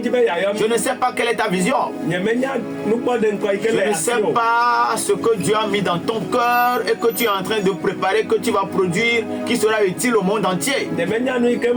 jibe ya yo. je ne sais pas quelle est ta vision. Nyemenya nupo de nko ike Je le ne ya. sais pas ce que Dieu a mis dans ton cœur et que tu es en train de préparer, que tu vas produire, qui sera utile au monde entier. Nyemenya nu ike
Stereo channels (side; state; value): both; identical; correlation 1.00